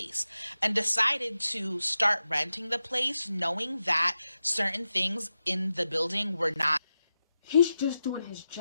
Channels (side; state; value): both; inverted; correlation -0.90